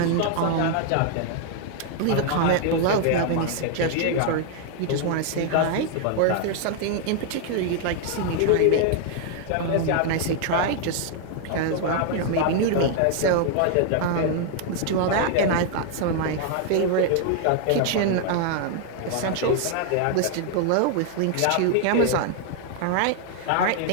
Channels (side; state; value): both; different; correlation 0.00